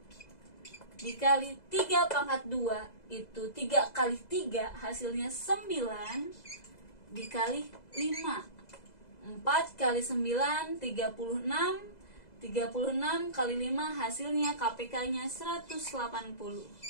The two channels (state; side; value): late; right; 2.0 ms